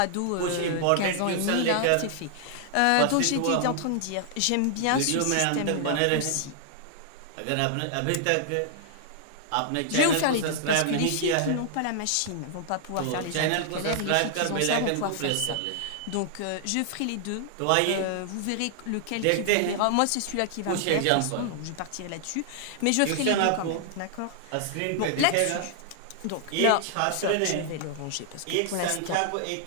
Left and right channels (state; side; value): different; both; correlation -0.01